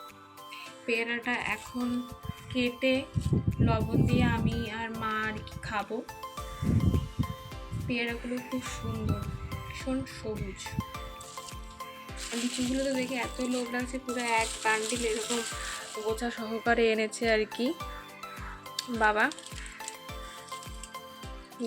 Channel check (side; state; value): both; identical; correlation 1.00